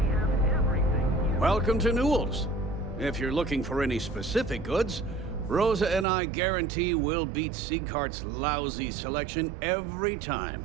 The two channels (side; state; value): left; drops out; at 6.1 s